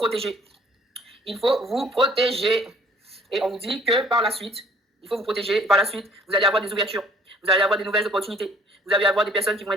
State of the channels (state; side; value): normal; both; correlation 0.55